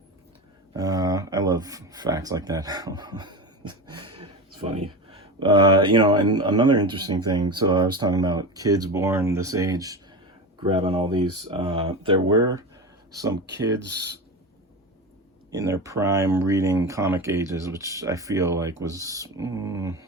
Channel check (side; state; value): both; normal; correlation 0.24